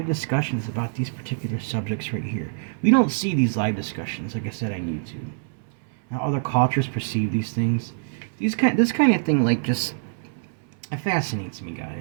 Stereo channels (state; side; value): silent; left; 60 dB below the other